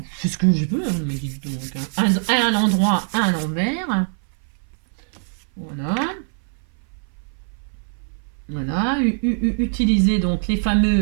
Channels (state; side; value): silent; left; 60 dB below the other